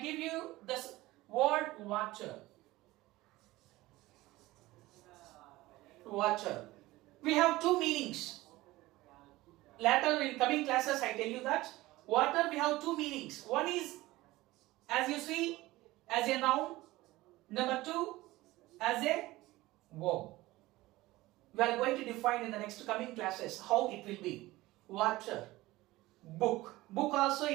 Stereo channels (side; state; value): left; quieter; 18.6 dB